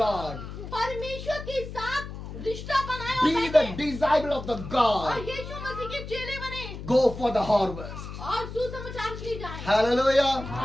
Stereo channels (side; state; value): left; noise; hum, 10 dB below the sound